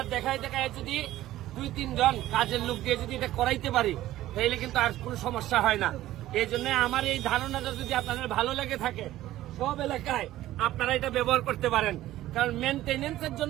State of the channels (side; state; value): left; quieter; 14.8 dB